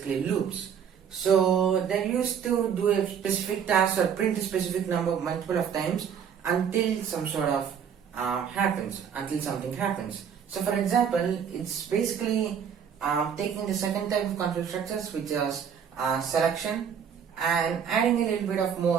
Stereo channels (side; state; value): left; quieter; 7.8 dB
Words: loops. So they're used to do a specific task or print a specific number multiple of times until some sort of until something happens. So for example, it's basically taking the second type of control structures, which is selection, and adding a little bit of